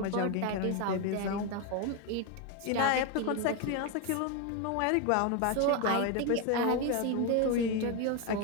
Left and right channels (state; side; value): different; both; correlation 0.02